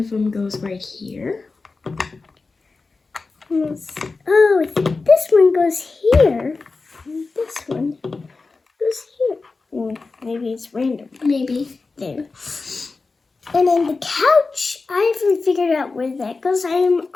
them goes right here. Oh, this one goes here. And this one goes here. Maybe it's random. Maybe. There. And then the couch, I haven't figured out where that goes. I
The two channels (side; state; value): right; quieter; 4.0 dB